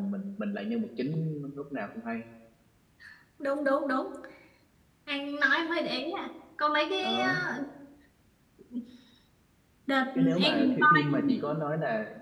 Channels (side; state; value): both; identical; correlation 1.00